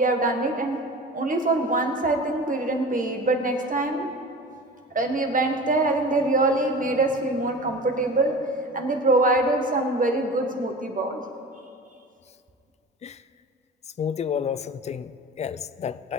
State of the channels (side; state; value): both; normal; correlation 0.36